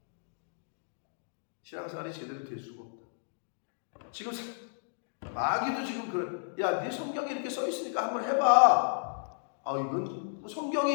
신앙생활이 제대로 될 수가 없다. 지금 마귀도 지금 그래. 야, 네 성경에 이렇게 써 있으니까 한번 해봐. 아, 이건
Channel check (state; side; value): silent; right; digital silence